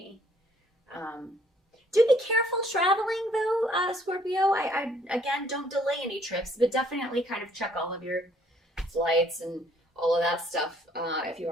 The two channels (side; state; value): both; normal; correlation 0.62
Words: Do be careful traveling, though, Scorpio. I again, don't delay any trips, but definitely kind of check all of your flights and all of that stuff. If you